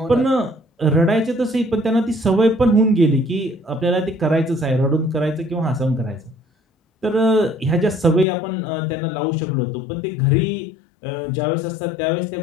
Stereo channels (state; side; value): drops out; right; at 8.2 s